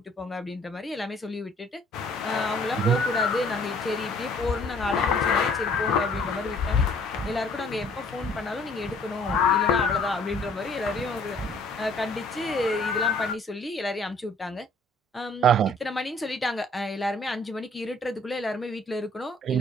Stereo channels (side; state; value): both; normal; correlation 0.57